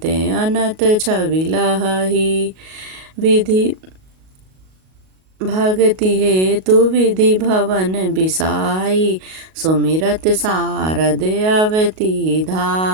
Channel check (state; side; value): late; left; 38 ms